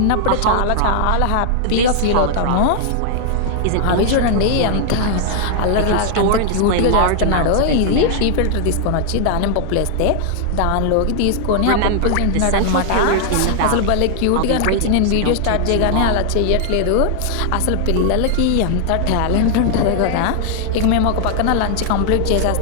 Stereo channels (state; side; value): different; both; correlation 0.00